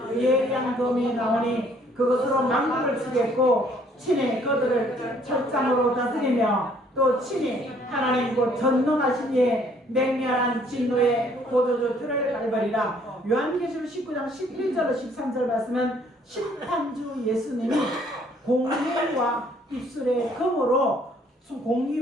예량금이 나오니 그것으로 만국을 치겠고 친히 그들을 철장으로 다스리며 또 친히 하나님 곧 전능하신 이의 맹렬한 진노의 포도주 틀을 밟으리라. 요한계시록 19장 11절 13절 말씀은 심판주 예수님이 공의와 입술의 금으로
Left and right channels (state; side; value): normal; both; correlation 0.62